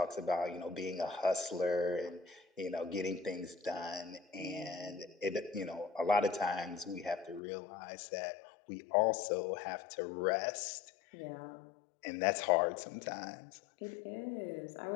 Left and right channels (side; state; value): right; drops out; at 7.4 s